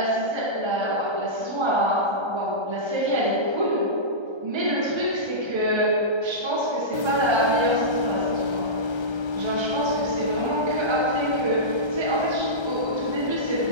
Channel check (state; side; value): late; left; 1.3 ms